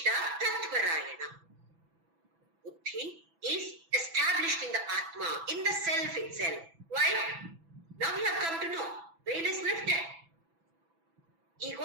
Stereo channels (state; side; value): late; left; 6.0 ms